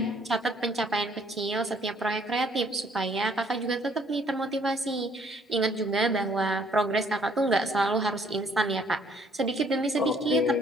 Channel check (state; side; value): normal; both; correlation 0.63